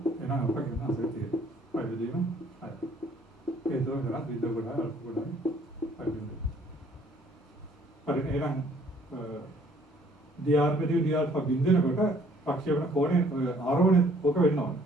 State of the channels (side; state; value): both; normal; correlation 0.60